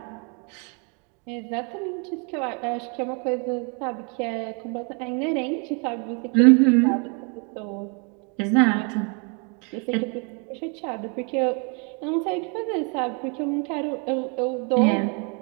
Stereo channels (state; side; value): quieter; left; 35.2 dB